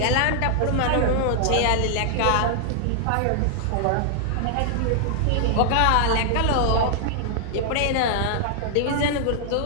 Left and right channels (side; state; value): both; different; correlation -0.01